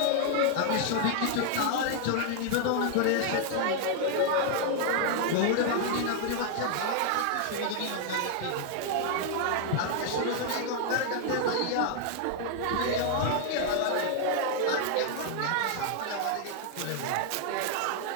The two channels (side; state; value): both; different; correlation 0.00